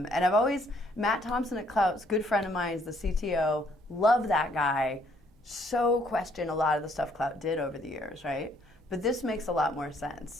I've always, Matt Thompson at Klout's good friend of mine, is the CTO, love that guy, so question a lot of the stuff Klout did over the years, right? But this makes a lot more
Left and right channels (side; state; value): both; normal; correlation 0.66